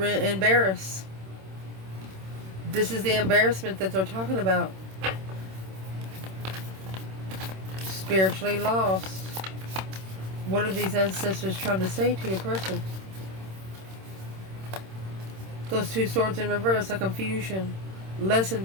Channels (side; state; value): left; late; 26 ms